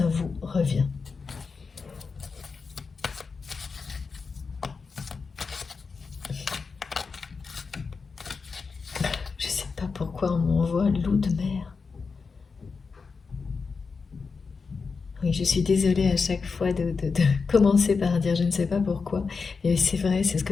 vous revient. Je sais pas pourquoi on m'envoie loup de mer. Oui, je suis désolée à chaque fois de commencer par dire je ne sais pas pourquoi. Et c'est vrai, c'est ce que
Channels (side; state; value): right; quieter; 4.9 dB